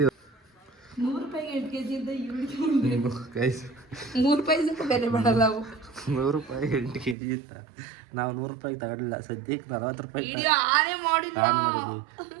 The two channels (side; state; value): left; drops out; at 7.2 s